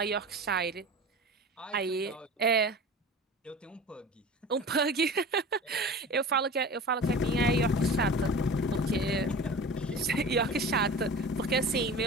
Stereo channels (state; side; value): normal; both; correlation 0.36